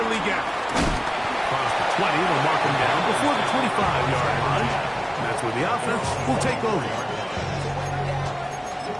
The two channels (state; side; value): identical; both; correlation 1.00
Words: Leggett. Across the 20, they'll mark him down before the 25-yard line. That's where the offense will take over.